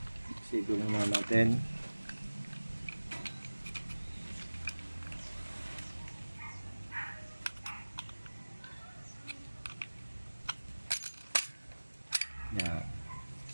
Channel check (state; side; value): inverted; both; correlation -1.00